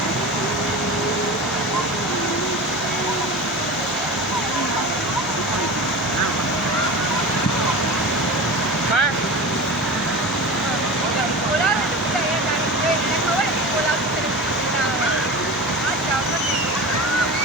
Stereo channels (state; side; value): noise; right; hum, 19 dB below the sound